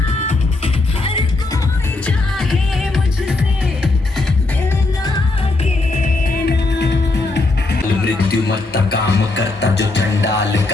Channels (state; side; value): quieter; right; 3.2 dB